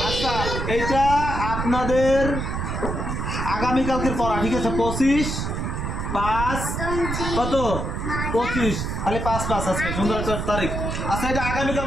আচ্ছা এটা আপনাদের আগামীকালকের পড়া, ঠিক আছে? 25/5 কত? 25, খালি 5/5 আজকে সুন্দর একটা তারিখ। আচ্ছা এটা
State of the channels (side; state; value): right; noise; rumble, 3 dB below the sound